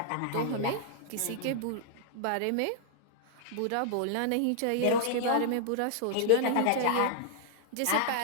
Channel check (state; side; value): different; both; correlation -0.01